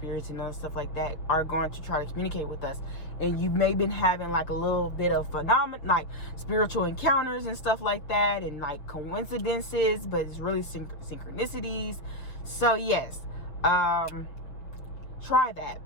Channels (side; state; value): right; late; 6.4 ms